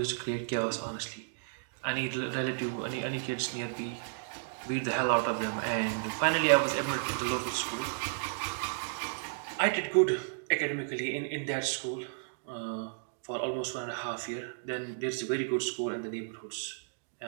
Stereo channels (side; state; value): left; silent; digital silence